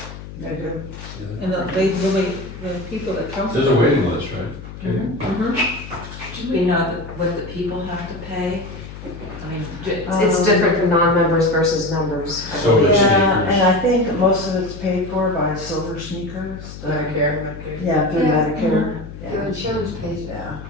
They do. and they really, the people that come. There's a waiting list, right? Okay. Mhm. Do we know what the people have to pay? I mean, It's different for non-members versus members, I So believe. it's- Yeah, sneakers. and I think most of it's paid for by Silver Sneakers. Medicare. Yeah, through Yeah. Medicare. Their insurance pays it. Yeah,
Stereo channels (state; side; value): noise; left; hum, 13 dB below the sound